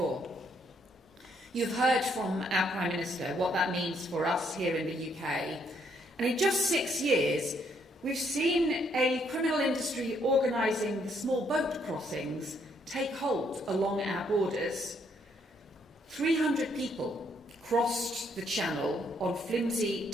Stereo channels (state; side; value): normal; both; correlation 0.71